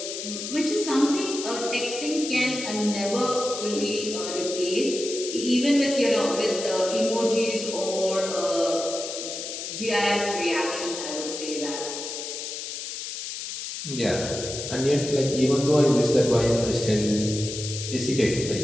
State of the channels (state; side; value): noise; left; hiss, 7 dB below the sound